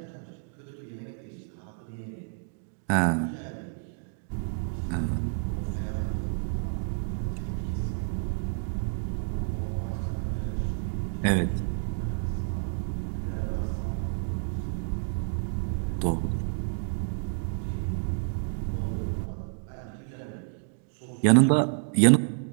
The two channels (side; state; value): left; silent; digital silence